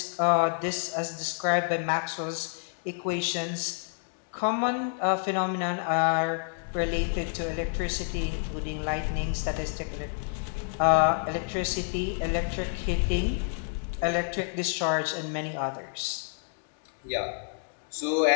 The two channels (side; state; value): right; silent; 59 dB below the other